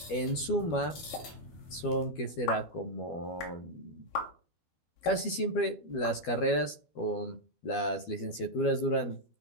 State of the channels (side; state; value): right; late; 12 ms